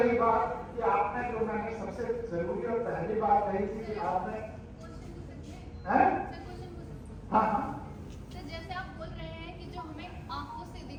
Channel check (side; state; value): both; identical; correlation 1.00